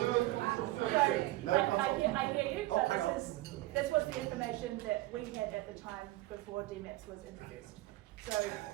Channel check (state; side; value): quieter; left; 18.3 dB